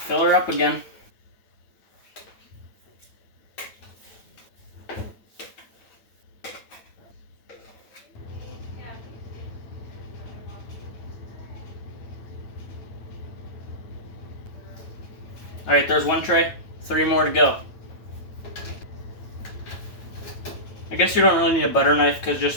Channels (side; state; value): right; late; 9.1 ms